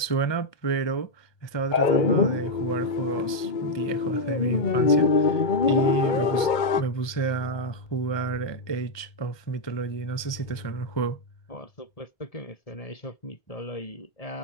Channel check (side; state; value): right; late; 1.2 ms